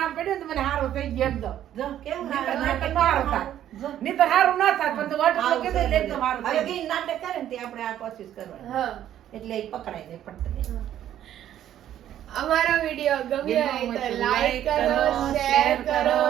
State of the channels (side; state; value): left; quieter; 11.4 dB